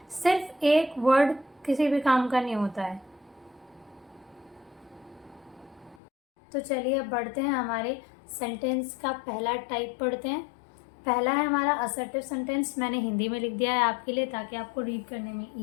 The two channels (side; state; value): right; drops out; at 6.0 s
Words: सिर्फ एक वर्ड किसी भी काम का नहीं होता है। तो चलिए अब बढ़ते हैं, हमारे सेंटेंस का पहला टाइप पढ़ते हैं। पहला है हमारा असर्टिव सेंटेंस। मैंने हिंदी में लिख दिया है आपके लिए ताकि आपको रीड करने में